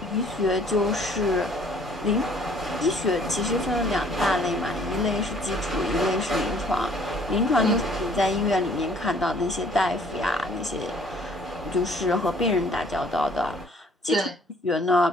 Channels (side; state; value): both; normal; correlation 0.57